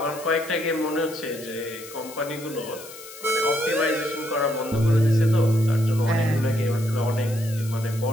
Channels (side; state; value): left; noise; hiss, 16 dB below the sound